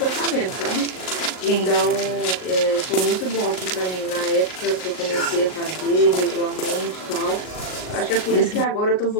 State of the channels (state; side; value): late; right; 38 ms